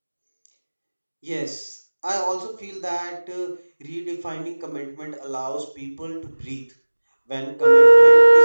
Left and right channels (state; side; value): inverted; both; correlation -1.00